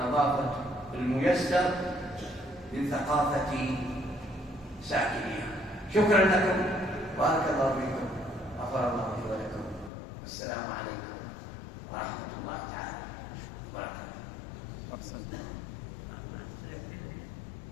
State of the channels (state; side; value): drops out; right; at 9.9 s